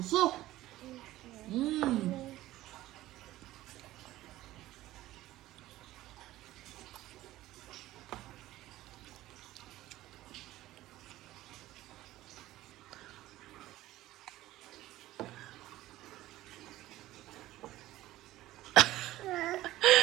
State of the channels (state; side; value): quieter; left; 15.8 dB